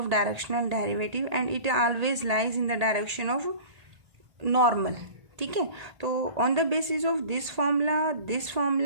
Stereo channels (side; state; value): left; late; 1.8 ms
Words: directional derivative and it always lies in the direction of normal. ठीक है. तो on the basis of this formula